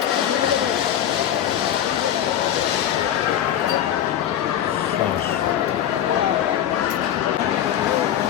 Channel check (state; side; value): quieter; right; 10.7 dB